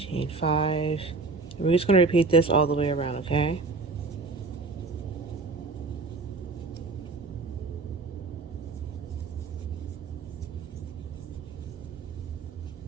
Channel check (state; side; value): quieter; left; 3.9 dB